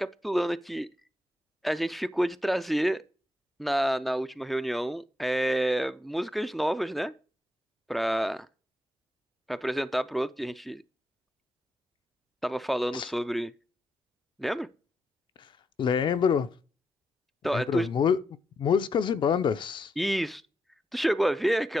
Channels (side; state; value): both; normal; correlation 0.83